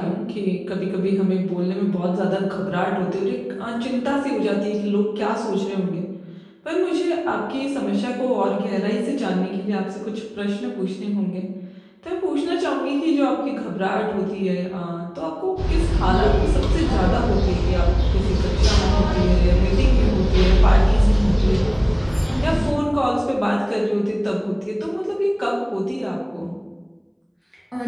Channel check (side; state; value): both; identical; correlation 1.00